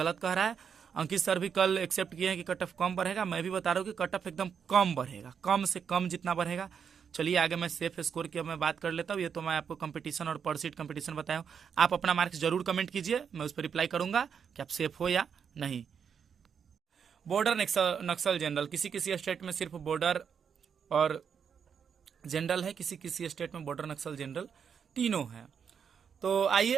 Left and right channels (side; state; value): left; quieter; 7.1 dB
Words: कह रहा है। अंकित सर भी कल एक्सेप्ट किए हैं कि कट ऑफ कम बढ़ेगा। मैं भी बता रहा हूँ कि कट ऑफ एकदम कम बढ़ेगा, कम से कम जितना बढ़ेगा। चलिए आगे मैं सेफ स्कोर की मैं बात कर लेता हूँ। ये तो मैं आपको कंपटीशन और पर सीट कंपटीशन बताया हूँ। आप अपना मार्क्स जरूर कमेंट कीजिए, मैं उस पर रिप्लाई करूंगा कि आप सेफ हो या नहीं। बॉर्डर नक्सल जनरल, किसी किसी स्टेट में सिर्फ बॉर्डर और जनरल है, किसी किसी स्टेट में बॉर्डर नक्सल जनरल तीनों है। तो